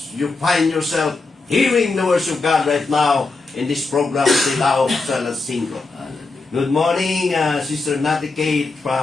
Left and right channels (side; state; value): right; quieter; 3.7 dB